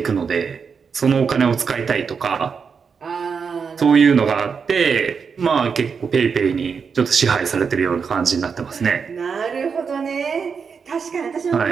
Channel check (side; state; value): left; quieter; 5.9 dB